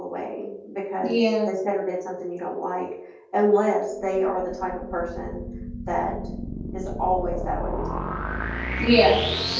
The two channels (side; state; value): both; identical; correlation 1.00